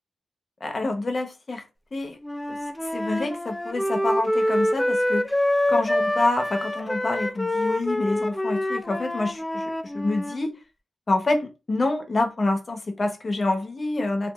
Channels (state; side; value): normal; both; correlation 0.97